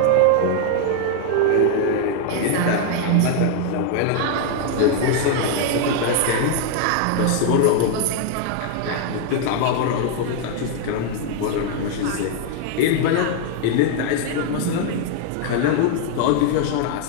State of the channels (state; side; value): different; both; correlation 0.00